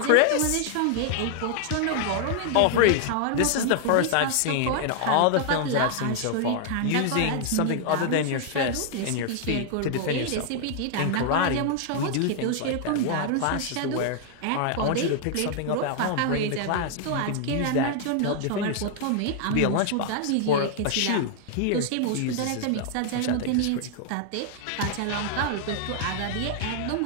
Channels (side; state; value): both; different; correlation 0.00